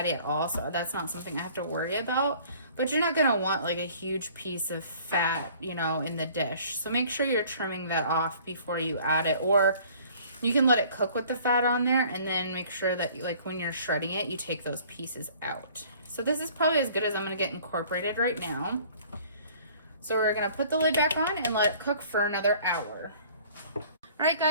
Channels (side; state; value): both; inverted; correlation -0.53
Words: at all, so that's not something I have to worry about. But you're not gonna want like a huge piece of fat, you know, in the dish. So make sure you're trimming that off before you add it, or you can let it cook with the fat on there and then make sure that like when you're shredding it, you take those pieces out. So this is probably as good as I'm gonna get incorporated right now. So we're gonna put the lid back on and let it cook for another hour. All right